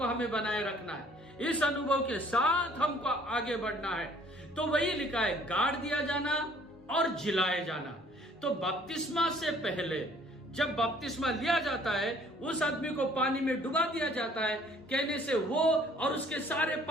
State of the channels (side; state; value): both; normal; correlation 0.57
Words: हमें बनाए रखना है, इस अनुभव के साथ हमको आगे बढ़ना है। तो वही लिखा है, गाड़ दिया जाना और जिलाए जाना। तो बपतिस्मा से पहले जब बपतिस्मा लिया जाता है, उस आदमी को पानी में डुबा दिया जाता है। कहने से वो और उसके सारे